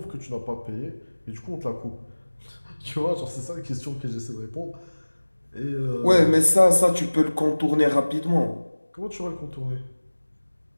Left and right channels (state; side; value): inverted; both; correlation -1.00